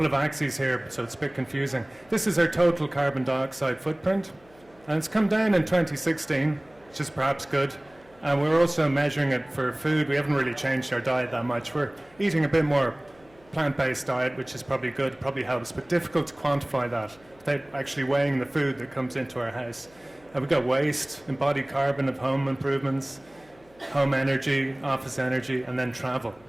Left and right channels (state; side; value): noise; left; hum, 29 dB below the sound